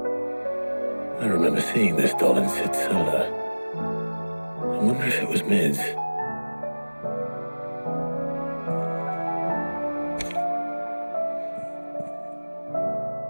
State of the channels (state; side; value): inverted; both; correlation -1.00